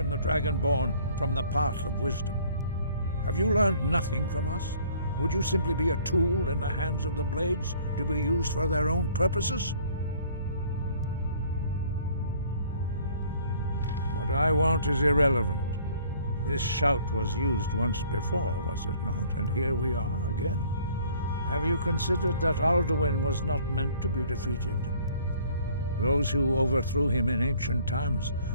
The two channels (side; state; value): both; inverted; correlation -0.56